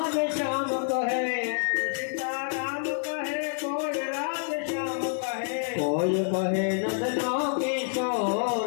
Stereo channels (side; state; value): right; silent; 59 dB below the other